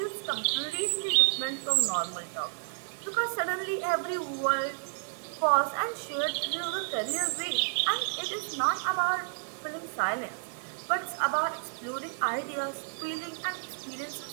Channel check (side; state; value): left; silent; 57 dB below the other